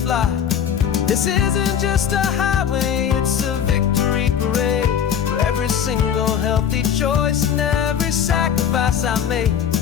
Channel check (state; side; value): quieter; right; 8.5 dB